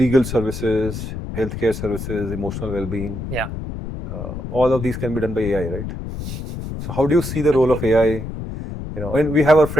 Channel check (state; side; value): noise; left; rumble, 7 dB below the sound